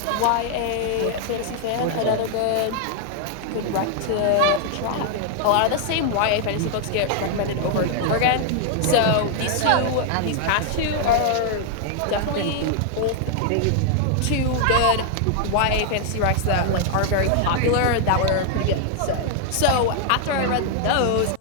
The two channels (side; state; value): both; different; correlation -0.01